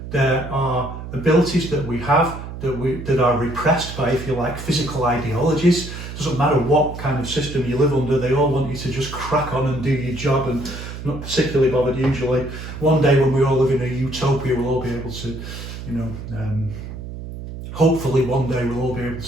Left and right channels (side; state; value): right; noise; hum, 10 dB below the sound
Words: there are abilities that we have that are repressed by, if you like, physical ideologies. Doesn't matter what kind of system you live under, they all want you to just crack on and do your job, and not particularly bothered usually. One day when we all live in a utopia, we'll all be able to, hopefully one day we'll all be able